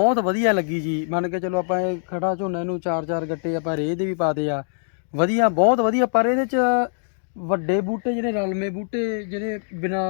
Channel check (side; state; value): right; silent; digital silence